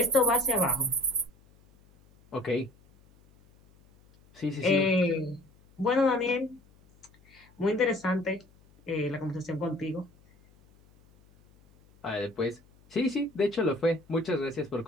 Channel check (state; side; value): noise; left; hum, 29 dB below the sound